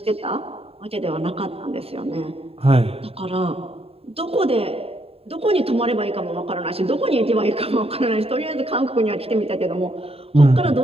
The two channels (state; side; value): late; left; 0.28 ms